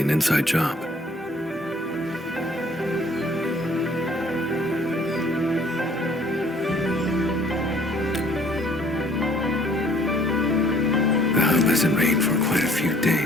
inside job. The hub hasn't rained for quite a few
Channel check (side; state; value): both; normal; correlation 0.58